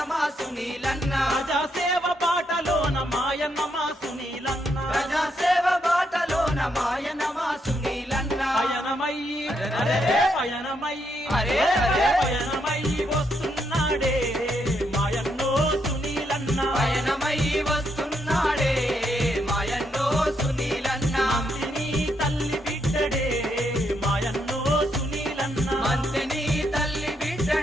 మా సునీలన్న ప్రజాసేవ బాటలోన మాయన్న మా సునీలన్న ప్రజాసేవ బాటలోన మాయన్న మా సునీలన్న పయనమయ్యి పయనమయ్యి అరే అరే పయనమయ్యి వస్తున్నాడే మాయన్నో సునీలన్న పయనమయ్యి వస్తున్నాడే మాయన్నో సునీలన్న మంతిని తల్లి బిడ్డడే మాయన్నో సునీలన్న మంతిని తల్లి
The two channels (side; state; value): both; normal; correlation 0.78